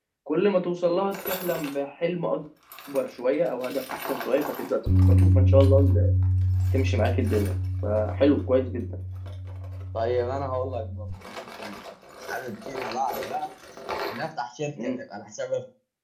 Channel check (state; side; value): identical; both; correlation 1.00